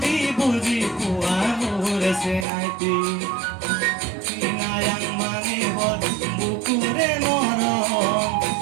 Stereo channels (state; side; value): drops out; left; at 2.5 s